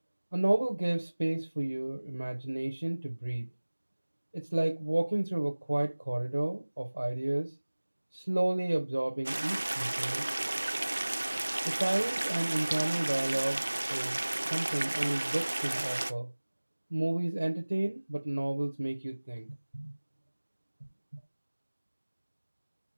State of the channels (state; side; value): inverted; both; correlation -1.00